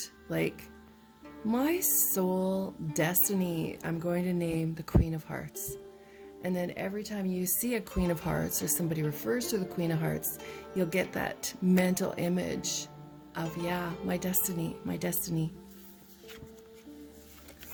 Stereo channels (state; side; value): identical; both; correlation 1.00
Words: like, my soul destiny, I'm going to name the Queen of Hearts. And then every time you see a Queen of Hearts or somebody refers to the Queen of Hearts, you'll get that mental image of, yeah, my destiny, my destiny.